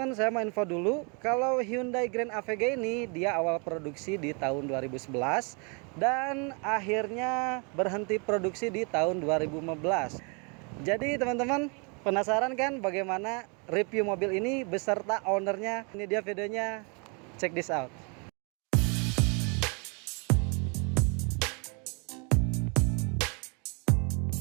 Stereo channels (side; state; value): left; quieter; 34.7 dB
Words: saya mau info dulu kalau Hyundai Grand Avega ini dia awal produksi di tahun 2011 dan akhirnya berhenti produksi di tahun 2015. Jadi teman-teman, penasaran kan bagaimana review mobil ini beserta ownernya? Ini dia videonya, check this out.